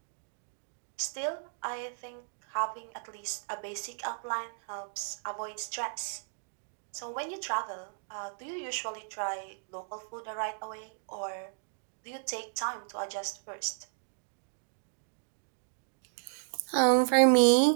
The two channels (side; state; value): left; silent; digital silence